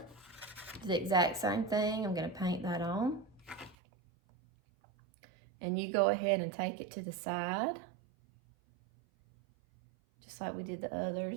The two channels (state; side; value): drops out; left; at 3.8 s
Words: Do the exact same thing. I'm gonna paint that on. And you go ahead and take it to the side, just like we did the